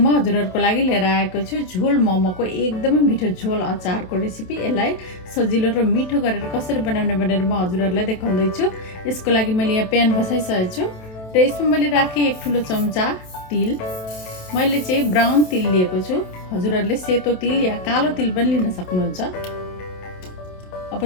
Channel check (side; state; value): right; late; 27 ms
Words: हजुरहरूको लागि लिएर आएको छु झोल मोमोको एकदमै मिठो झोल अचारको रेसिपी। यसलाई सजिलो र मिठो गरेर कसरी बनाउने भनेर म हजुरहरूलाई देखाउँदैछु। यसको लागि मैले यहाँ प्यान बसाइसकेको छु र यसमा मैले राखेँ 1 ठुलो चम्चा तिल। मैले चाहिँ ब्राउन तिल लिएको छु। हजुरहरूले सेतो तिल या कालो तिल पनि लिन सक्नुहुन्छ। अब